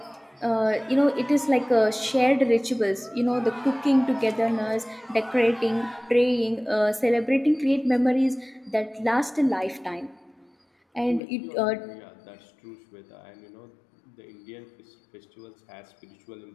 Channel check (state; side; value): drops out; right; at 11.2 s